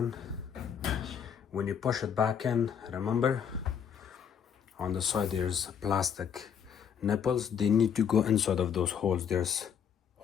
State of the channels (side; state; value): right; quieter; 7.8 dB